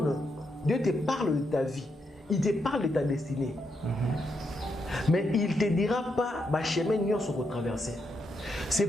parle de ta vie, il te parle de ta destinée. Mais il ne te dira pas, ma chemin n'y sont retraversés. C'est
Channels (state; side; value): normal; both; correlation 0.81